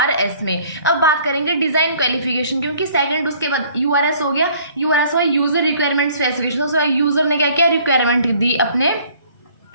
में। अब बात करेंगे डिज़ाइन क्वालिफिकेशन, क्योंकि सेकंड उसके बाद URS हो गया। URS हुआ यूज़र रिक्वायरमेंट स्पेसिफिकेशन। उसके बाद यूज़र ने क्या किया, रिक्वायरमेंट दी अपने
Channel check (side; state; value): both; inverted; correlation -0.57